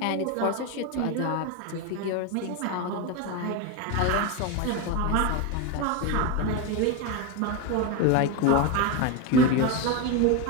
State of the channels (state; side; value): different; both; correlation 0.03